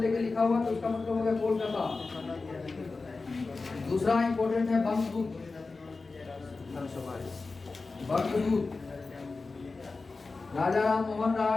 लिखा हुआ तो उसका मतलब हो गया कोलकाता। दूसरा इंपॉर्टेंट है बंगदूत। Bangadoot Raja Ram Mohan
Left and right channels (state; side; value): quieter; right; 3.9 dB